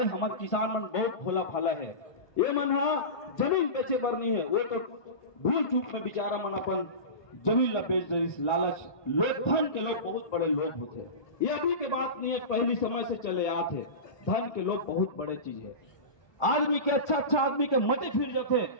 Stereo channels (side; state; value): right; late; 1.2 ms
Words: हमार किसान मन बहुत भोला भाला है, ये मन जमीन बेचे बर नहीं है, वो तो भूल चूक में बेचारा मन अपन जमीन ला बेच दे। लालच लोग, धन के लोग बहुत बड़े लोग होते हैं, ये अभी के बात नहीं है, पहली समय से चले आते। धन के लोग बहुत बड़े चीज है। आदमी के अच्छा आदमी के मते फिर जाते।